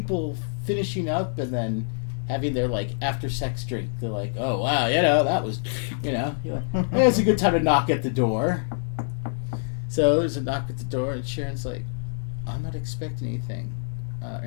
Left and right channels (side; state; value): right; silent; digital silence